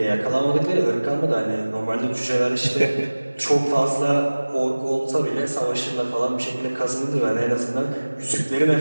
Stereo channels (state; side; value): inverted; both; correlation -1.00